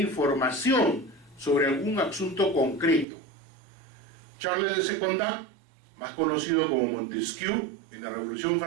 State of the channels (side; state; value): left; drops out; at 3.1 s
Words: sobre algún asunto concreto. Charles de Secondat, más conocido como Montesquieu en la Revolución